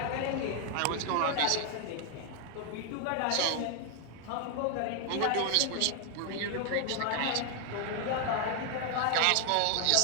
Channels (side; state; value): both; different; correlation 0.00